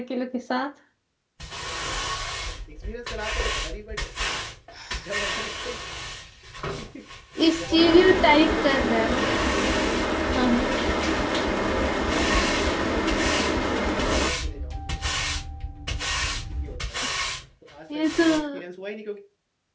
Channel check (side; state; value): both; identical; correlation 1.00